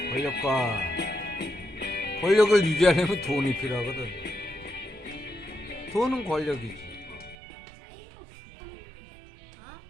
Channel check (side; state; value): left; drops out; at 7.4 s